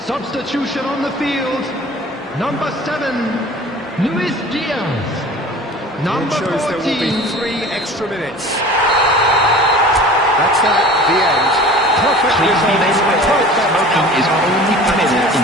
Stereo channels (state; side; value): normal; both; correlation 0.42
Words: Substitution on the field. Number 7, Luis Diaz. Number It shows 14. there will be 3 extra minutes. That's that, the end. Perfect Please be result. made aware that Perfect smoking is outcome. only permitted in